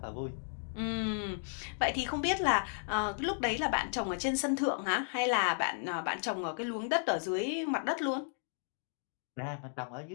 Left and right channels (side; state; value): right; silent; digital silence